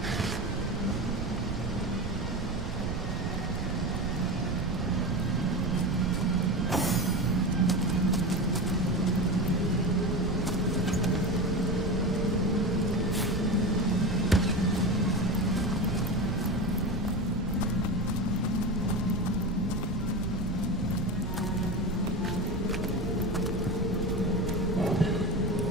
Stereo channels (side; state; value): right; noise; rumble, 5 dB below the sound